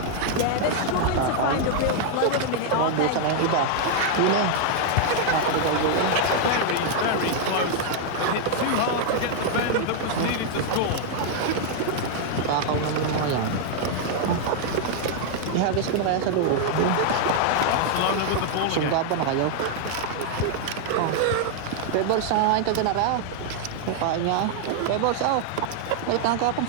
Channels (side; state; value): both; different; correlation 0.00